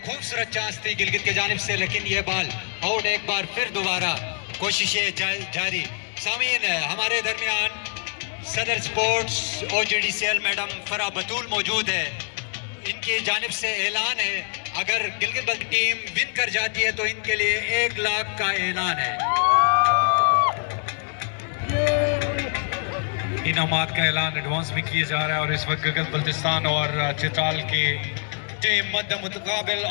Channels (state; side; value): silent; right; 62 dB below the other